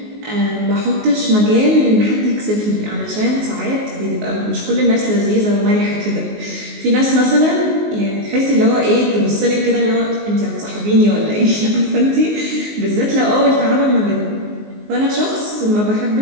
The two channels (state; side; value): late; left; 19 ms